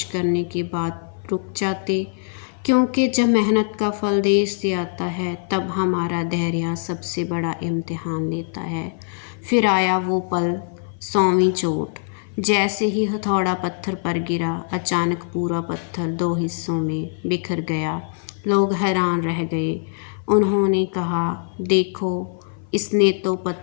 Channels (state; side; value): silent; right; 56 dB below the other